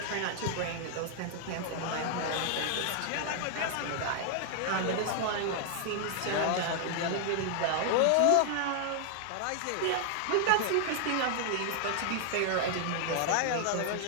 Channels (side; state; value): both; different; correlation 0.00